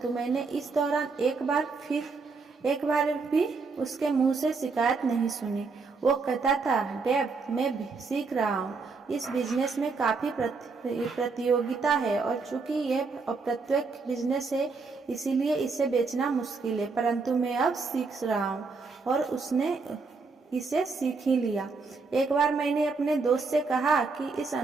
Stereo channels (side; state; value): left; quieter; 4.4 dB